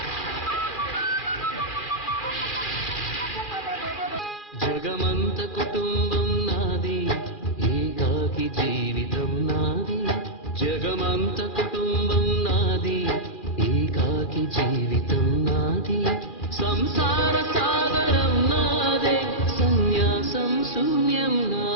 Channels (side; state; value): right; late; 2.4 ms